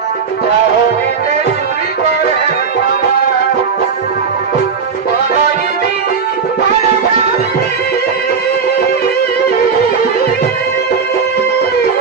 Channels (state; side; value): quieter; left; 5.8 dB